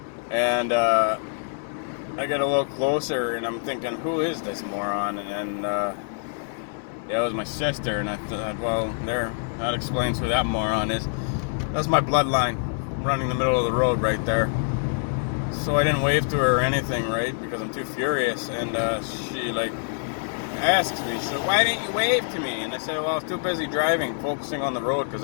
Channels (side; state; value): right; silent; digital silence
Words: And I get a little closer, and I'm thinking, who is this moron? And yeah, it was my sister, and I thought, well, that explains who that moron is. That's my bloodline, running the middle of the road right there. So I didn't wave to her or anything, right, because I'm too furious. And she, like, asks me, she said, why didn't you wave to me? And I said, well, I was too busy driving, focusing on the road, because